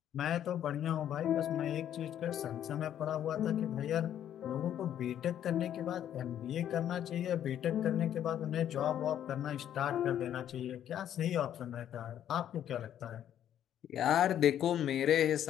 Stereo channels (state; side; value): quieter; right; 10.5 dB